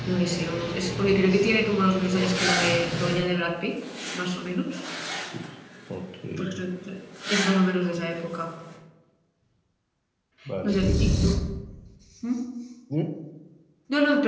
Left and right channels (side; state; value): both; identical; correlation 1.00